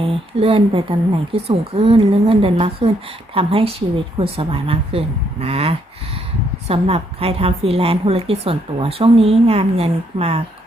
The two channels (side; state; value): both; normal; correlation 0.73